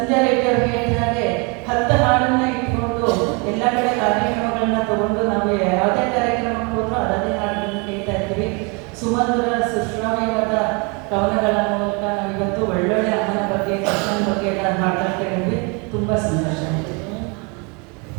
ರೆಡ್ಡಿ ಅವ್ರು ಹೇಳಿದ ಹಾಗೆ 10 ಹಾಡನ್ನ ಇಟ್ಕೊಂಡು ಎಲ್ಲ ಕಡೆ ಕಾರ್ಯಕ್ರಮಗಳನ್ನ ತಗೊಂಡು ನಾವು ಯಾವುದೇ ಕಾರ್ಯಕ್ರಮಕ್ಕೆ ಹೋದ್ರೂ ಅದನ್ನೇ ಹಾಡನ್ನು ಕೇಳ್ತಾ ಇರ್ತೀವಿ. ಸುಮಧುರ ಸುಶ್ರಾವ್ಯವಾದ ಕವನಗಳ ಮೂಲಕ ನಾವು ಇವತ್ತು ಒಳ್ಳೊಳ್ಳೆ ಅಮ್ಮನ ಬಗ್ಗೆ, ಕೃಷ್ಣನ ಬಗ್ಗೆ ಎಲ್ಲ ಹಾಡ್ತಾ ಕೇಳಿದ್ವಿ. ತುಂಬ ಸಂತೋಷ ಆಯಿತು.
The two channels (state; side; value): quieter; left; 31.6 dB